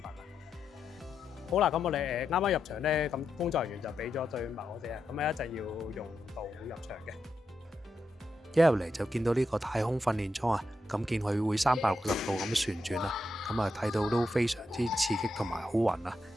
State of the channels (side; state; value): both; normal; correlation 0.85